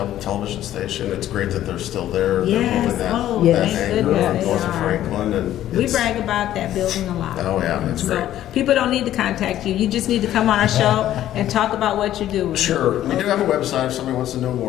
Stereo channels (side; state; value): right; quieter; 12.6 dB